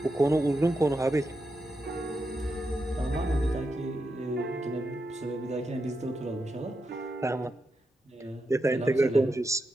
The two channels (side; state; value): both; normal; correlation 0.86